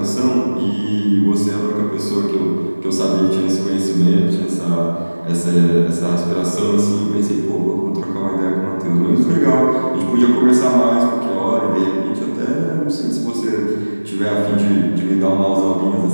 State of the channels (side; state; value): both; inverted; correlation -1.00